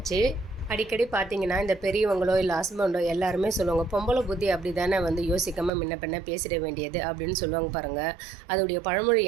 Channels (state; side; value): drops out; left; at 5.7 s